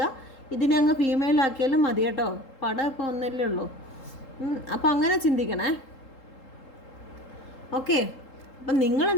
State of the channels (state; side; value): late; right; 3.8 ms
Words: ഇതിനെ അങ്ങ് ഫീമെയിലാക്കിയാലും മതി കേട്ടോ. പടം ഇപ്പോൾ ഒന്നല്ലേ ഉള്ളൂ. അപ്പം അങ്ങനെ ചിന്തിക്കണേ. ഓക്കെ, അപ്പം